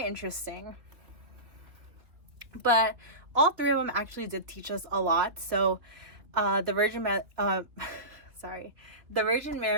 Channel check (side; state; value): left; late; 2.9 ms